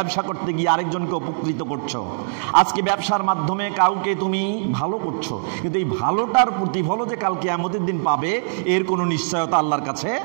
করতে গিয়ে আরেকজনকে উপকৃত করছো, আজকে ব্যবসার মাধ্যমে কাউকে তুমি ভালো করছো, কিন্তু এই ভালোটার প্রতিফলও যে কাল কিয়ামতের দিন পাবে এর কোনো নিশ্চয়তা আল্লাহর কাছে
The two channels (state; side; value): silent; left; digital silence